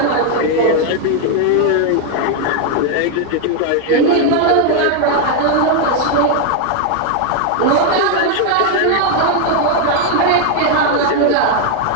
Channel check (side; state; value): both; different; correlation 0.00